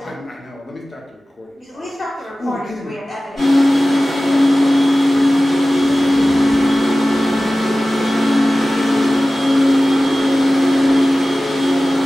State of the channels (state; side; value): normal; both; correlation 0.96